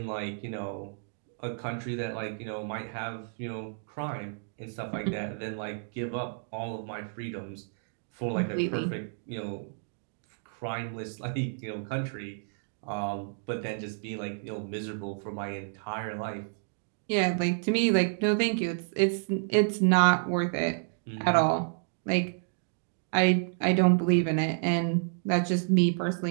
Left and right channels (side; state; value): left; silent; digital silence